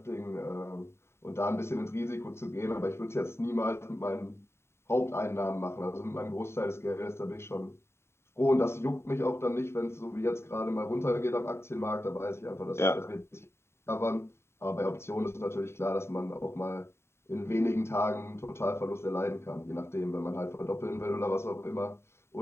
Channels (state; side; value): late; right; 0.12 ms